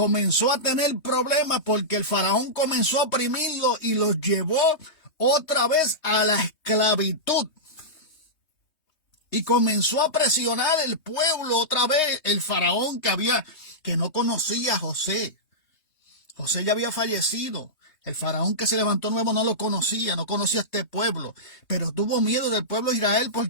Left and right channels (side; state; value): right; late; 3.2 ms